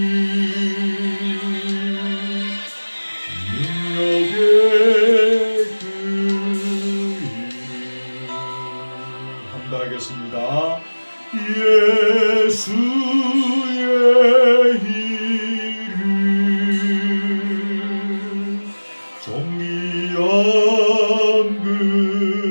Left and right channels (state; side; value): inverted; both; correlation -1.00